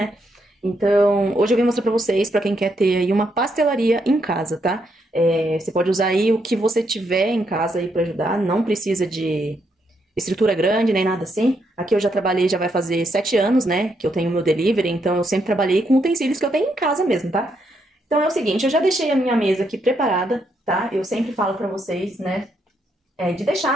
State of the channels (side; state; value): both; normal; correlation 0.77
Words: Então, hoje eu vim mostrar pra vocês, pra quem quer ter aí uma pastelaria em casa, tá? Você pode usar aí o que você tiver em casa aí pra ajudar, não precisa de estrutura grande, nem nada assim. Aqui eu já trabalhei, já vai fazer 7 anos, né, que eu tenho meu delivery, então eu sempre trabalhei com utensílios que eu tenho em casa mesmo, tá? Então é o seguinte, eu já deixei a minha mesa aqui preparada, tá? Eu sempre falo pra vocês, né, de